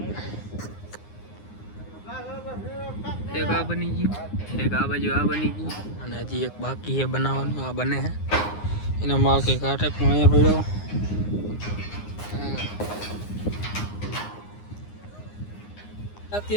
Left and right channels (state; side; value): late; right; 9.7 ms